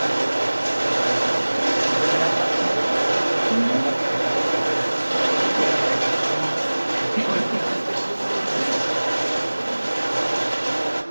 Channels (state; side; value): inverted; both; correlation -1.00